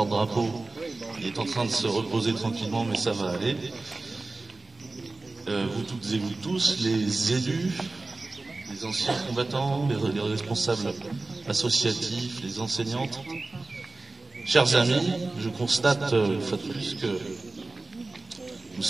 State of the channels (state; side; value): quieter; left; 3.2 dB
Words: Il est en train de se reposer tranquillement, mais ça va aller. Vous toutes et vous tous, les élus, les anciens combattants, les responsables associatifs, les enseignantes, chers amis, je constate une fois de plus que nous